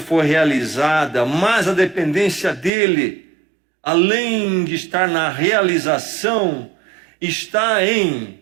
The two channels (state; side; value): drops out; left; at 2.7 s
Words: realizada, mas a dependência dele, além de estar na realização, está em